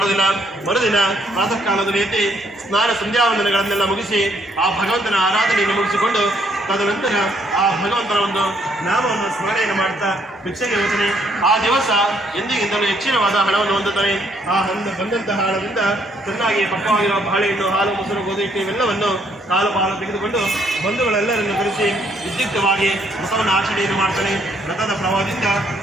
ಮರುದಿನ ಪ್ರಾತಃ ಕಾಲದಲ್ಲಿ ಎದ್ದು ಸ್ನಾನ ಸಂಧ್ಯಾವಂದನೆಗಳನ್ನೆಲ್ಲ ಮುಗಿಸಿ ಆ ಭಗವಂತನ ಆರಾಧನೆಯನ್ನು ಮುಗಿಸಿಕೊಂಡು ತದನಂತರ ಆ ಭಗವಂತನ ಒಂದು ನಾಮವನ್ನು ಸ್ಮರಣೆಯನ್ನು ಮಾಡ್ತಾ ಭಿಕ್ಷೆಗೆ ಹೋಗ್ತಾನೆ. ಆ ದಿವಸ ಎಂದಿಗಿಂತಲೂ ಹೆಚ್ಚಿನವಾದ ಹಣವನ್ನು ಹೊಂದುತ್ತಾನೆ. ಆ ಬಂದಂತಹ ಹಣದಿಂದ ಚೆನ್ನಾಗಿ ಪಕ್ವವಾಗಿರುವ ಬಾಳೆಹಣ್ಣು, ಹಾಲು, ಮೊಸರು, ಗೋಧಿ ಹಿಟ್ಟು ಇವೆಲ್ಲವನ್ನು ಕಾಲು ಪಾಲು ತೆಗೆದುಕೊಂಡು ಬಂಧುಗಳೆಲ್ಲರನ್ನು ಕರೆಸಿ ವಿದ್ಯುಕ್ತವಾಗಿ ವ್ರತವನ್ನು ಆಚರಣೆಯನ್ನು ಮಾಡ್ತಾನೆ. ವ್ರತದ ಪ್ರಭಾವದಿಂದ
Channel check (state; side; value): normal; both; correlation 0.69